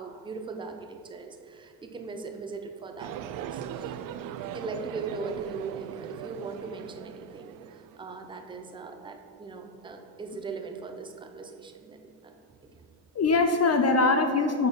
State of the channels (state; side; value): normal; both; correlation 0.03